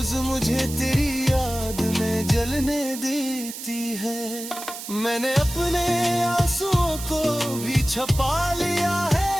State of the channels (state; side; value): noise; right; hiss, 10 dB below the sound